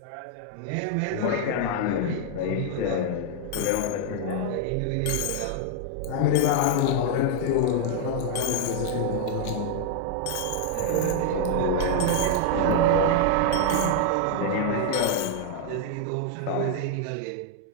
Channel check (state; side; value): different; both; correlation -0.01